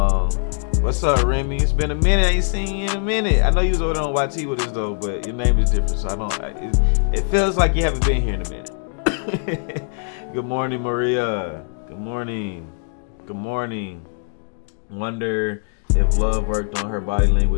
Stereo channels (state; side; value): silent; right; digital silence